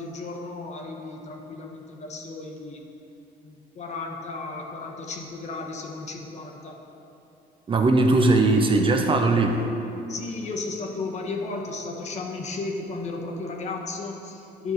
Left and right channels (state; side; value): normal; both; correlation 0.60